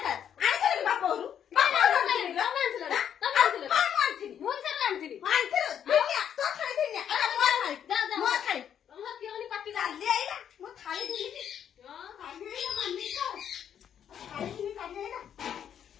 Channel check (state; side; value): quieter; right; 9.0 dB